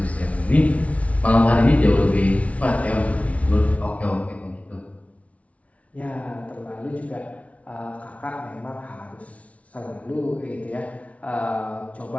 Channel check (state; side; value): late; right; 0.065 ms